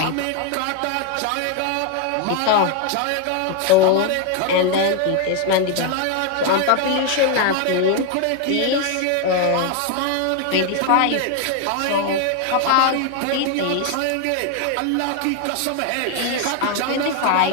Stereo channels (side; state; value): both; different; correlation 0.01